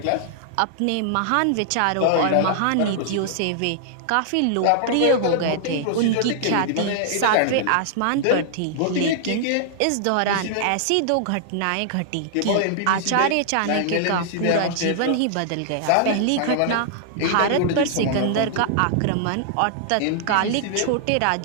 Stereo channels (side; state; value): both; different; correlation -0.01